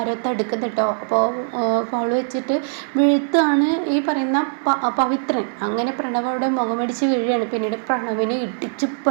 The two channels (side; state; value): left; silent; digital silence